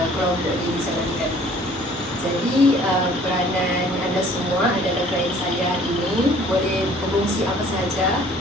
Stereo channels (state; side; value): normal; both; correlation 0.54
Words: kelompok ini dijalankan. Jadi peranan anda semua adalah klien saya hari ini, boleh berkongsi apa sahaja,